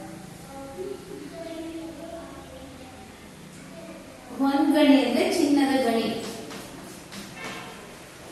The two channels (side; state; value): both; identical; correlation 1.00